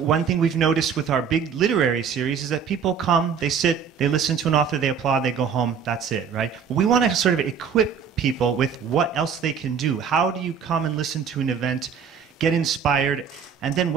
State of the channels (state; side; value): quieter; left; 6.9 dB